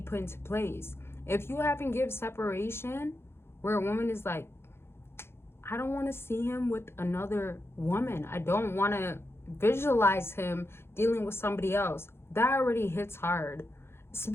put into place. If you haven't given separation where a woman is like, I don't want to see him with another woman, I don't want to visualize him dealing with somebody else, that already hits hard,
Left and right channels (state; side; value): late; right; 0.12 ms